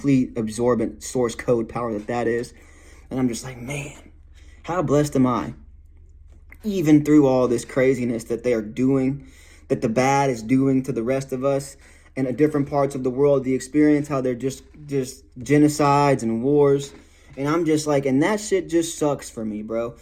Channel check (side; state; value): both; identical; correlation 1.00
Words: absorbent source code power that is. And I'm just like, man, how blessed am I? Even through all this craziness that they are doing, that the bad is doing to the rest of us in different parts of the world, the experience, how they're just genocides and wars. And I'm just like, and that shit just sucks for me, bro,